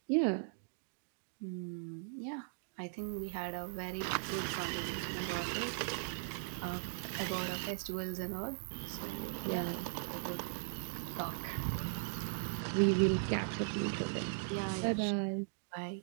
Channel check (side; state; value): left; silent; digital silence